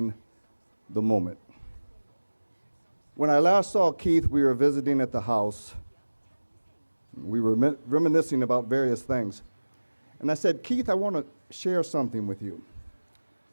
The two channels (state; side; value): inverted; both; correlation -1.00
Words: the moment. When I last saw Keith, we were visiting at the house. We were reminiscing about various things. And I said, Keith, I want to share something with you.